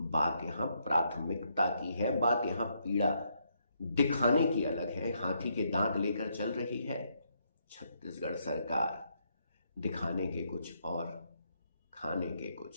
यहां प्राथमिकता की है, बात यहां पीड़ा दिखाने की अलग है। हाथी के दांत लेकर चल रही है छत्तीसगढ़ सरकार, दिखाने के कुछ और, खाने के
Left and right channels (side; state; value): both; inverted; correlation -0.75